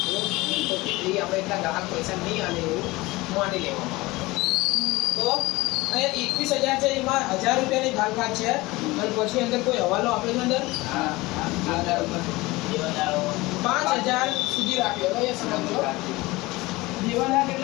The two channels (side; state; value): right; quieter; 21.1 dB